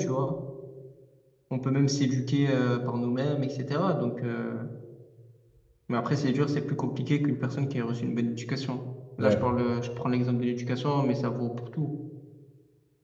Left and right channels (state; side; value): identical; both; correlation 1.00